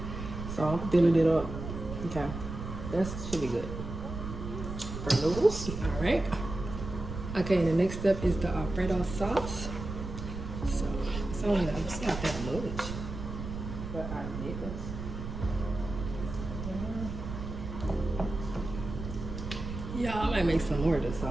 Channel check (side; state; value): right; noise; rumble, 7 dB below the sound